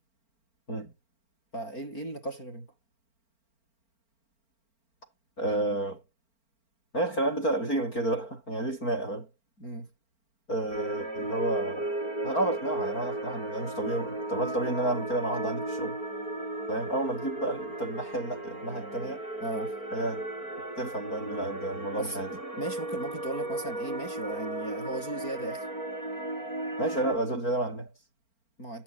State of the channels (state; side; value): late; right; 4.4 ms